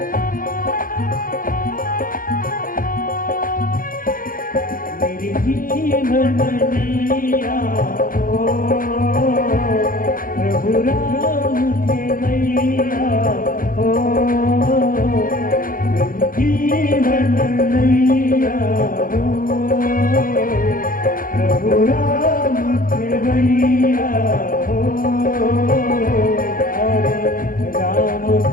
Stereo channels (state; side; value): late; right; 0.41 ms